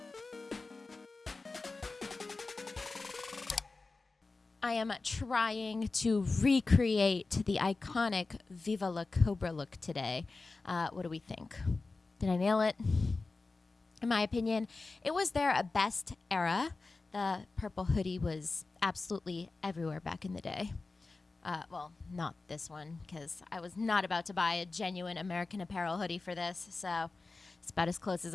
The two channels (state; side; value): quieter; right; 3.7 dB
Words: I am trying to recreate the iconic Viva La Cobra look today. What do we think? Did I nail it? In my opinion, it was their best era. The purple hoodie was absolutely everywhere back in the day. Well, not this one, because I was not about to buy a genuine American Apparel hoodie for this, so it's about as close as